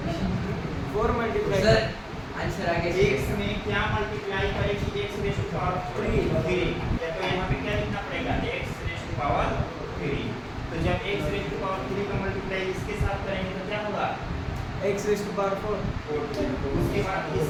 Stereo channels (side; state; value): both; identical; correlation 1.00